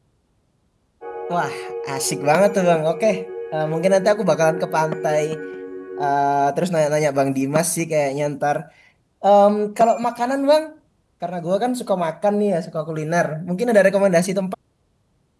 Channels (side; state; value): both; identical; correlation 1.00